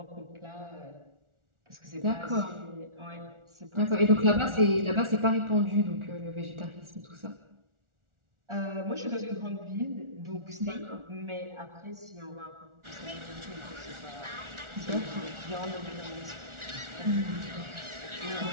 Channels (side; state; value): left; late; 1.4 ms